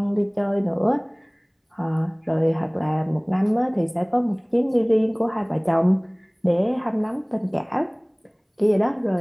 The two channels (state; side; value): identical; both; correlation 1.00